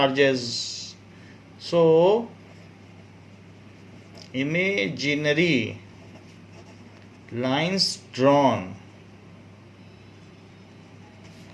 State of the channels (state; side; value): identical; both; correlation 1.00